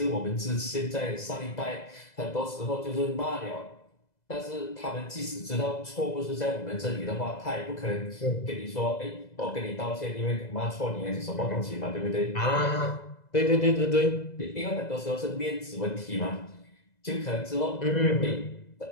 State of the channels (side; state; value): right; late; 2.0 ms